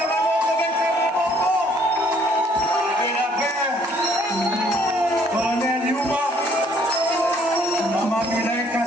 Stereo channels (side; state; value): both; normal; correlation 0.63